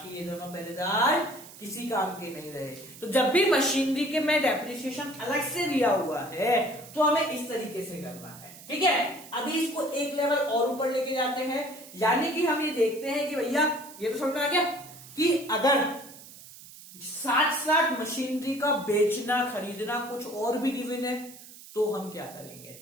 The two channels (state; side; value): noise; right; hiss, 18 dB below the sound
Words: ये दोनों पहरेदार किसी काम के नहीं रहे। तो जब भी मशीनरी के में डेप्रिसिएशन अलग से दिया हुआ है तो हमें इस तरीके से करना है, ठीक है। अभी इसको एक लेवल और ऊपर लेके जाते हैं, यानी कि हम ये देखते हैं कि भैया ये तो समझ में आ गया कि अगर साथ साथ मशीनरी का बेचना खरीदना कुछ और भी गिवन है तो हम क्या करेंगे,